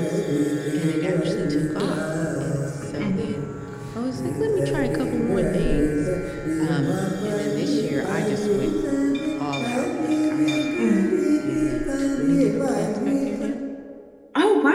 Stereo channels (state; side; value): identical; both; correlation 1.00